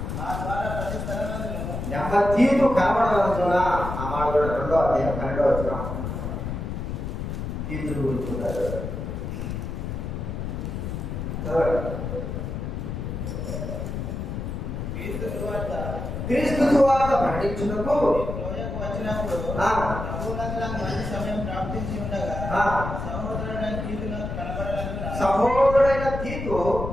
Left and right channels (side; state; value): left; noise; rumble, 5 dB below the sound